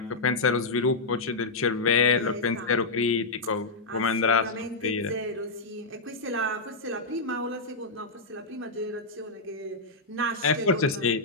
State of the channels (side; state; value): right; quieter; 3.5 dB